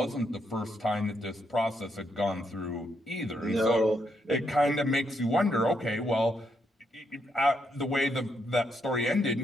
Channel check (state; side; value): normal; both; correlation 0.78